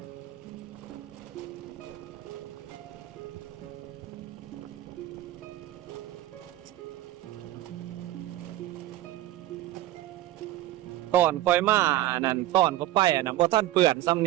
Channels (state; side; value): quieter; left; 14.8 dB